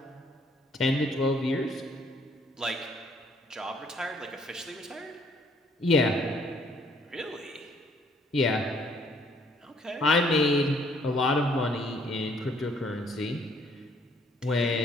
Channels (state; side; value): normal; both; correlation 0.64